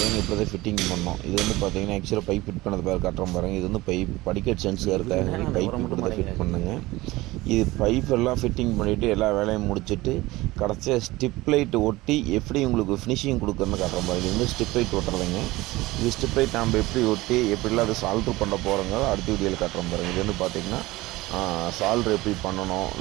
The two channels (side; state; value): left; quieter; 19.5 dB